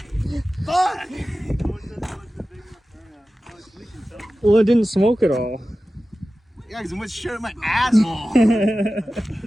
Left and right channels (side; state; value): both; normal; correlation 0.95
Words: Fuck. Well, it didn't smoke at all. Yeah, because it went straight up my asshole. See, there's